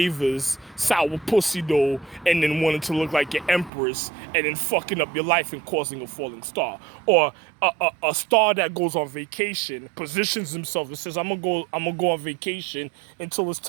sour pussy though, and then wanting to look like your empress, and then fucking up your life and causing a falling star. Or a star that goes on vacation, positions himself and says, I'm gonna go on vacation until it's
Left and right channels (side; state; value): left; drops out; at 3.7 s